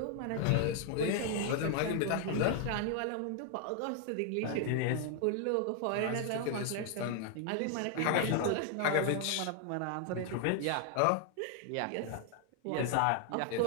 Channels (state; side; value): different; both; correlation 0.00